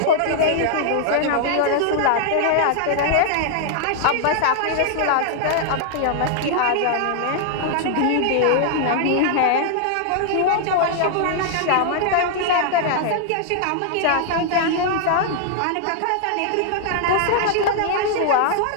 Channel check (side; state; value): both; different; correlation -0.01